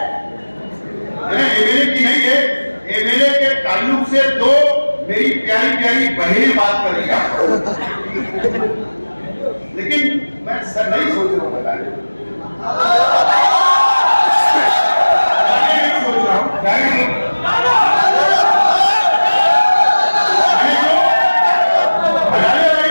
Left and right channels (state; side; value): inverted; both; correlation -1.00